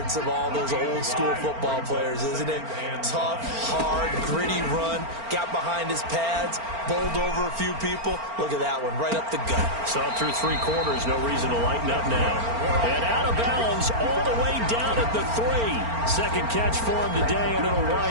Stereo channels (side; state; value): left; late; 4.4 ms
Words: of all those old school football players, isn't it? Tough, hard, gritty run. Got behind his pads, bowled over a few people. Look at that one, right up the gut. Saw through 3 quarters, no reason to lighten up now. And out of bounds, all the way down at the 3. 2nd catch for him today, and it'll